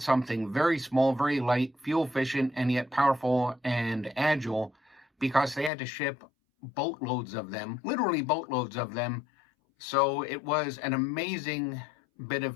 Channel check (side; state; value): right; drops out; at 5.7 s